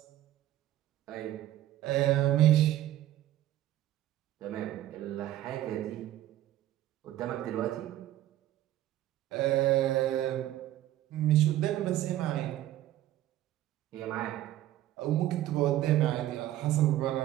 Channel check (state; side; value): quieter; left; 13.7 dB